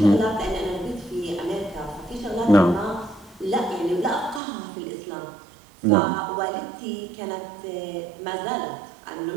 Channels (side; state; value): left; drops out; at 4.4 s